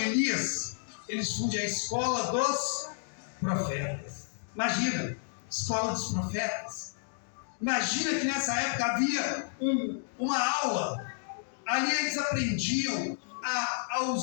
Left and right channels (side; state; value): right; silent; digital silence